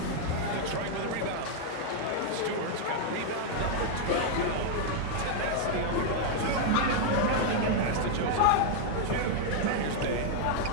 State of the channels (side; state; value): both; different; correlation 0.00